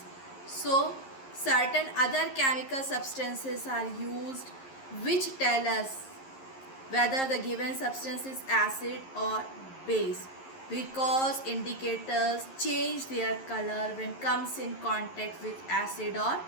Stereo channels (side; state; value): right; late; 11 ms